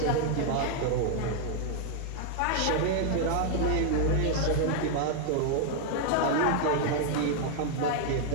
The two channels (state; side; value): different; both; correlation 0.00